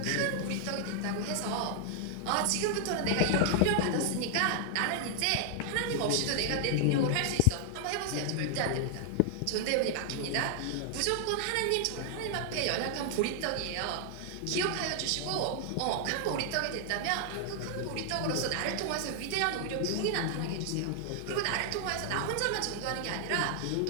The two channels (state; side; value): different; both; correlation 0.00